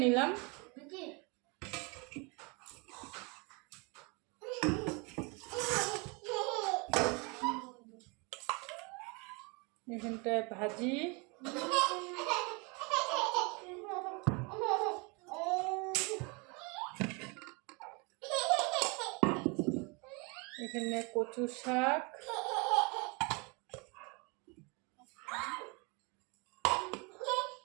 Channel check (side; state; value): left; quieter; 30.0 dB